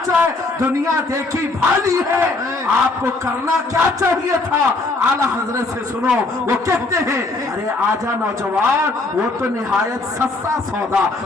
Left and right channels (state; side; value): quieter; right; 3.3 dB